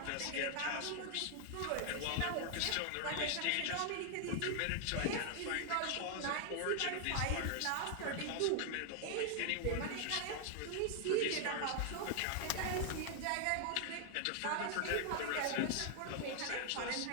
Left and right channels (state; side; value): different; both; correlation 0.00